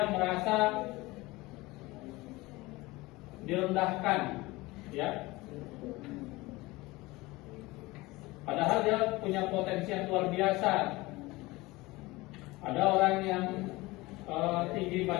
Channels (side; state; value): right; quieter; 21.1 dB